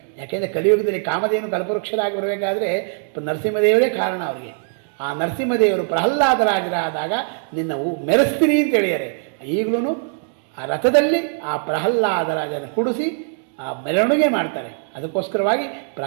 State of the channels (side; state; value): left; silent; 65 dB below the other